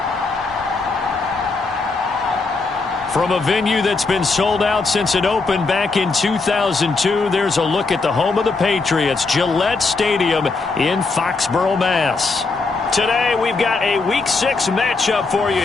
From a venue that's been sold out since it opened back in 2002, there's a look at the home of the Patriots, Gillette Stadium in Foxborough, Mass. Today, we've got a Week 6 matchup for you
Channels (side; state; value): right; quieter; 4.0 dB